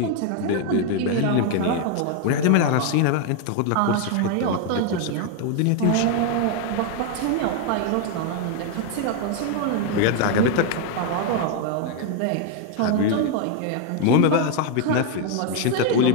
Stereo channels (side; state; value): both; different; correlation 0.01